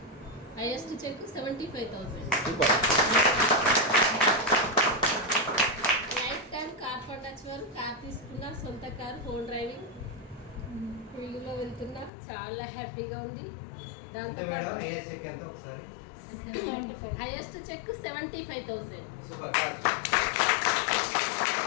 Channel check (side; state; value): right; drops out; at 12.1 s